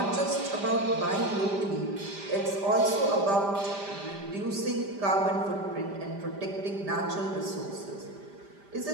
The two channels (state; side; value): late; left; 5.0 ms